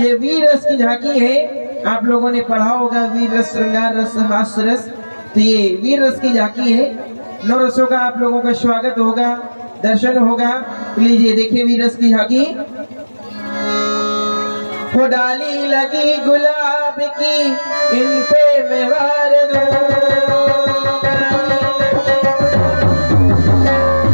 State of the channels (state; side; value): inverted; both; correlation -1.00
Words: वीर रस की झांकी है। आप लोगों ने पढ़ा होगा वीर रस, श्रृंगार रस, हास्य रस। तो ये वीर रस की झांकी है। नौ रसों का आप लोगों का स्वागत होगा, दर्शन होगा। लीजिए देखिए वीर रस की झांकी। वो डाली लगी गुलाब की, इन पे मैं वार दूं।